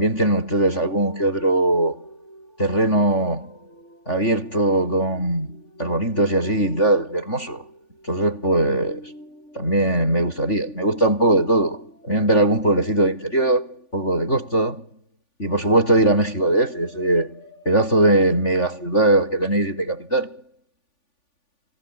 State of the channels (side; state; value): right; late; 3.5 ms